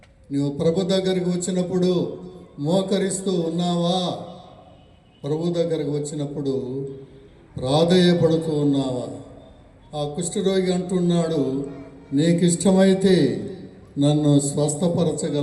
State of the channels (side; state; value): both; identical; correlation 1.00